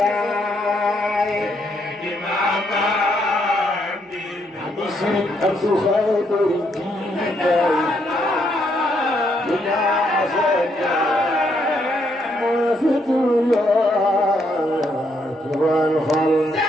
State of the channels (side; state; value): both; normal; correlation 0.74